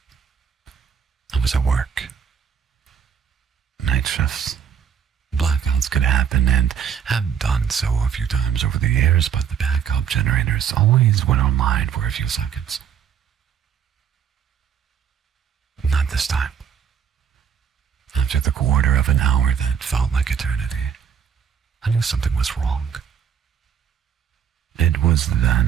I was at work. Night shifts. Blackouts could happen and have done so a few times over the years, but the backup generators always went online for a few seconds. Not this time. After the quarter of an hour that felt like eternity, I knew something was wrong. It was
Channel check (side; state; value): left; quieter; 7.9 dB